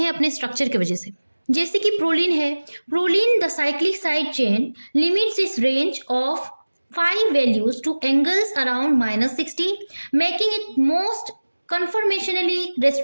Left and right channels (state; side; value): inverted; both; correlation -1.00